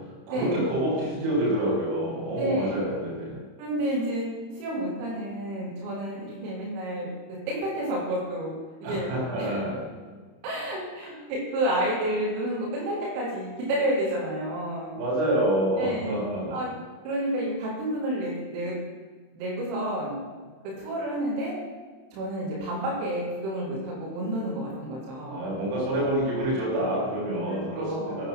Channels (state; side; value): late; left; 31 ms